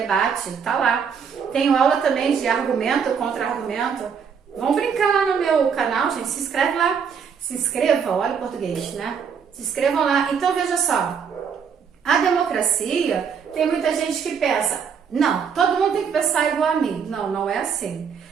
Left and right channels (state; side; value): quieter; left; 6.8 dB